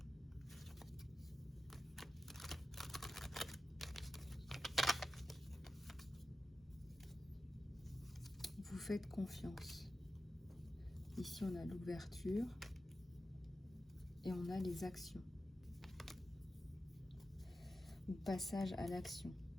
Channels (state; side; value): normal; both; correlation 0.92